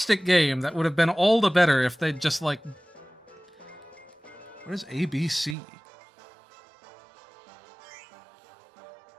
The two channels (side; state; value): left; drops out; at 5.6 s